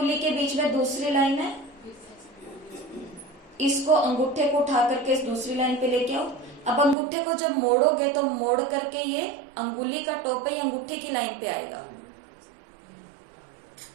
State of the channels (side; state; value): left; drops out; at 7.0 s